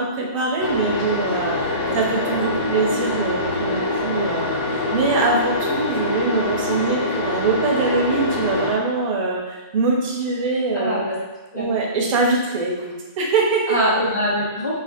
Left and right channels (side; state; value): both; inverted; correlation -0.33